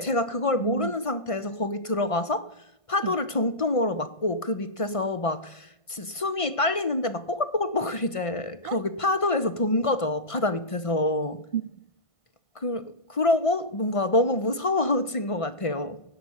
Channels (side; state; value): right; late; 1.5 ms